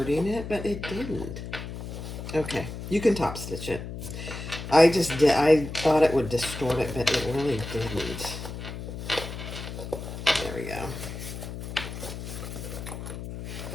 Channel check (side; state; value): left; noise; hum, 8 dB below the sound